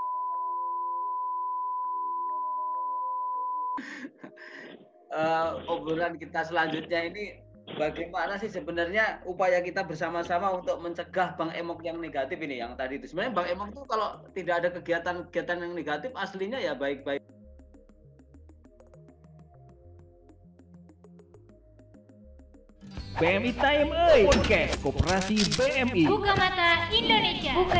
Obrolan kita selanjutnya ini bagaimana sih sebenarnya upaya kita bersama-sama untuk mencegah Bank Emok yang negatif ini, yang tadi itu. Sebenarnya Bank Emok itu kalau tidak ada kegiatan-kegiatan yang negatif aslinya ya baik-baik. BMI Time Podcast Koperasi BMI. Buka mata Indonesia.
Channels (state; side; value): identical; both; correlation 1.00